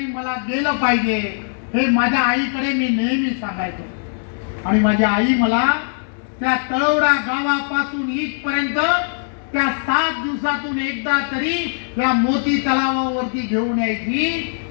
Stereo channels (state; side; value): silent; right; digital silence